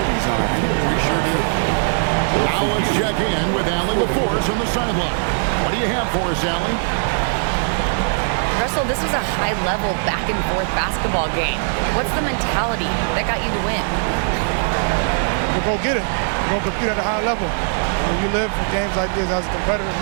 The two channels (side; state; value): left; silent; digital silence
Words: on our hands. We sure do. Now let's check in with Allie LaForce on the sideline. What do you have for us, Allie? Russell, this was a high-level back-and-forth basketball game. What's the mentality that got you the win? We'll go get it. We're going to compete at a high level. When you live for games like this as a competitor,